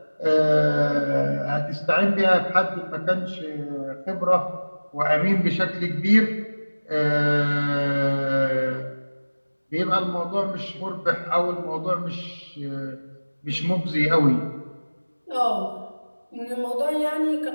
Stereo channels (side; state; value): both; inverted; correlation -1.00